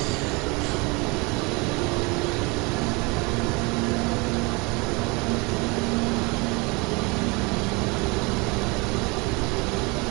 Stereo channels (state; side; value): quieter; left; 27.5 dB